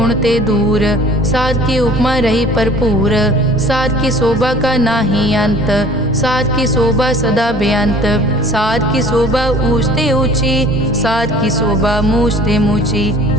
ते दूर, साध की उपमा रही भरपूर। साध की शोभा का नाही अंत, साध की शोभा सदा बेअंत। साध की शोभा ऊंचते ऊंची, साध की शोभा मूछते मूची।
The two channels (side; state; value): both; normal; correlation 0.49